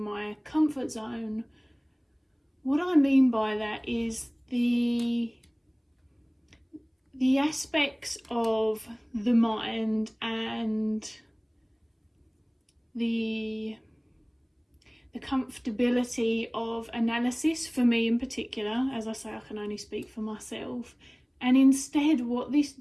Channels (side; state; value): both; identical; correlation 1.00